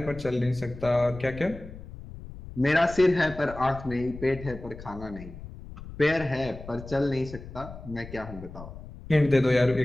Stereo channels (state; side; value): noise; left; rumble, 14 dB below the sound